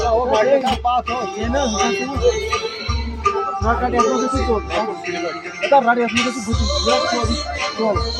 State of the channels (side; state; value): both; identical; correlation 1.00